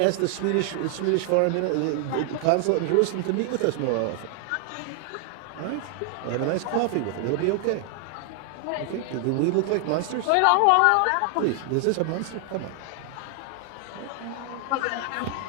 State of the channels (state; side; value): different; both; correlation 0.00